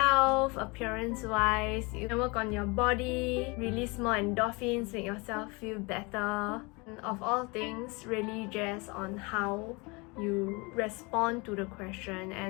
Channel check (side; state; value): right; quieter; 27.5 dB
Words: appearance wise, you can work on your body, release more endorphins, make yourself feel better. And of all things, really just on how you respond to the question